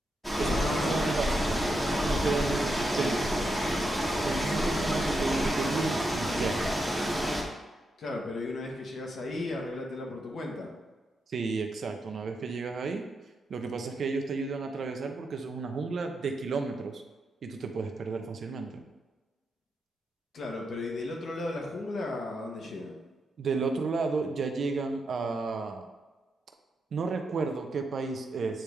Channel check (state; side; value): normal; both; correlation 0.84